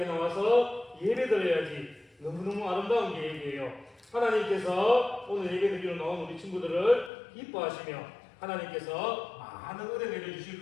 나와서 예배 드려야지. 너무너무 아름다운 계획이에요. 하나님께서 오늘 예배 드리러 나온 우리 친구들을 기뻐하시며 하나님께서 많은 은혜 내려주실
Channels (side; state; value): right; drops out; at 7.1 s